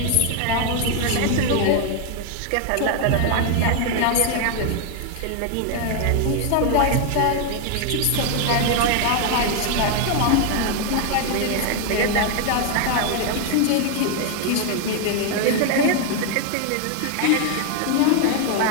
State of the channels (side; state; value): both; different; correlation 0.01